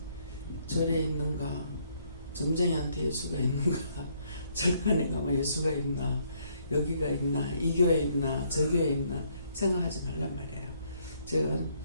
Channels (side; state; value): both; inverted; correlation -0.69